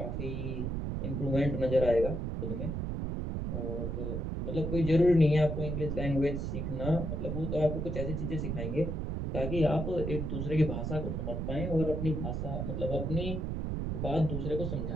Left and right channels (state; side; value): noise; right; rumble, 2 dB below the sound